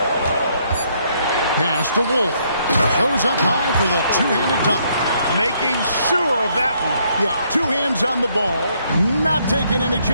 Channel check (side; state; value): both; inverted; correlation -0.70